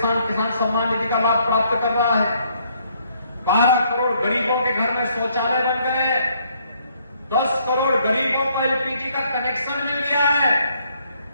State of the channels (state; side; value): inverted; both; correlation -0.68